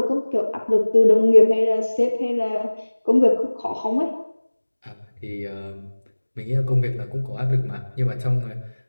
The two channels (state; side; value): inverted; both; correlation -1.00